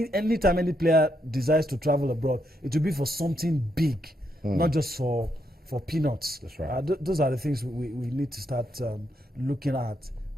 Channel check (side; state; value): both; normal; correlation 0.79